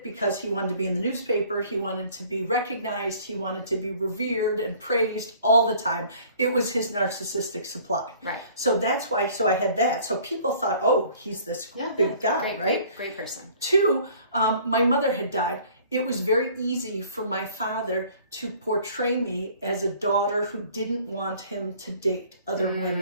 because he wanted to be in the newspaper. He wanted to be recognized. He wanted to be revered and praised all the time. It was his narcissistic supply. Right. So that's why, I had that. So people thought, oh, he's this big guy, right? Great person. 2, my mother had died. It was very easy for my father to portray me as a daughter who didn't want him to date other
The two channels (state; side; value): inverted; both; correlation -0.53